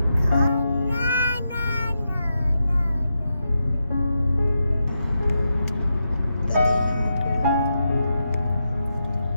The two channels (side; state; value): both; inverted; correlation -0.86